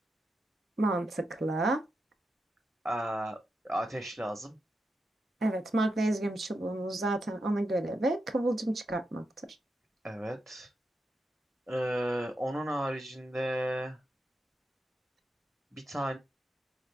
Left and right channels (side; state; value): both; normal; correlation 0.86